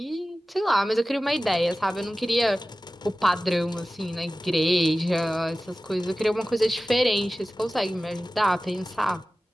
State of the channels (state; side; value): normal; both; correlation 0.96